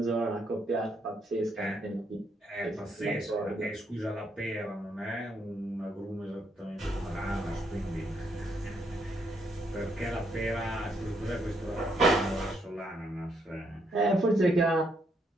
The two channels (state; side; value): normal; both; correlation 0.75